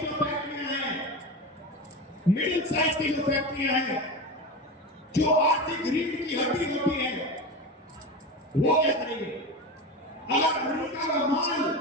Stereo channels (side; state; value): both; normal; correlation 0.24